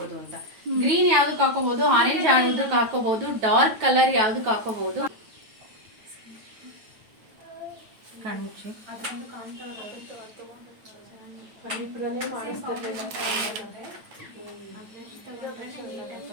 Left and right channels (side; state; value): left; late; 9.3 ms